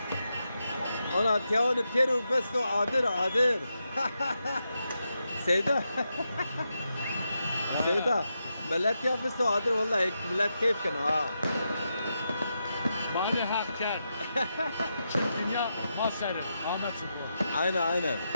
Ona tiyavını peru besto adır. Seyda. Seyda. Millet ya besto adır vallahi millet keyif kan ha. Bana hak ker. Dünya maserin. Ahmet Sıkı. Aynen.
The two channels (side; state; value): both; inverted; correlation -0.85